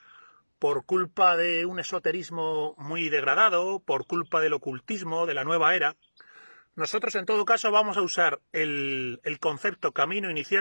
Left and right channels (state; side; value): inverted; both; correlation -1.00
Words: por culpa de un esoterismo muy degradado, por culpa del ocultismo, de la nueva era. Nosotros, en todo caso, vamos a usar el concepto camino